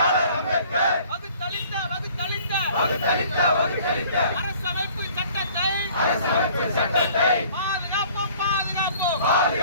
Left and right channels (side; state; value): both; inverted; correlation -0.53